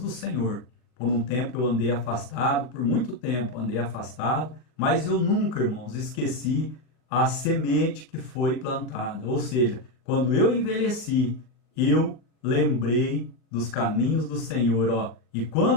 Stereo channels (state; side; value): late; right; 40 ms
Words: Senhor. Por um tempo eu andei afastado, por muito tempo andei afastado, mas eu nunca, irmãos, esqueci a semente que foi plantada. Ou seja, quando eu envelheci, eu lembrei dos caminhos do Senhor, ó. E